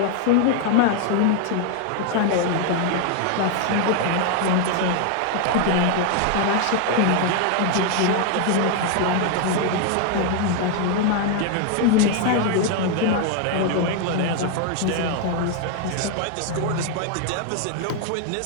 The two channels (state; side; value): different; both; correlation 0.00